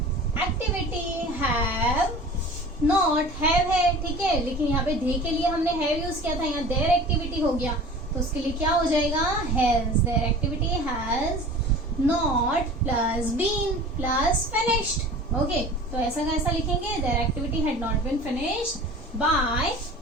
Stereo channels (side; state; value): both; normal; correlation 0.41